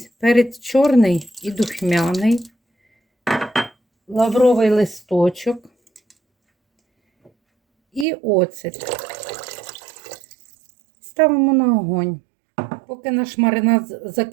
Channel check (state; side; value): drops out; left; at 8.1 s